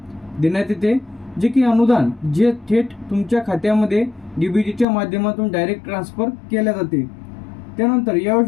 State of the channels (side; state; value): right; drops out; at 4.9 s